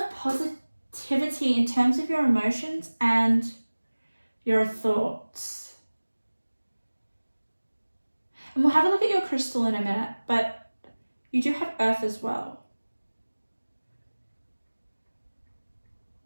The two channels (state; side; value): inverted; both; correlation -1.00